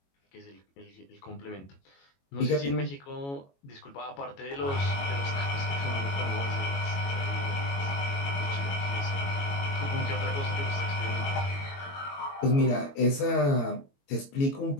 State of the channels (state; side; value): late; right; 22 ms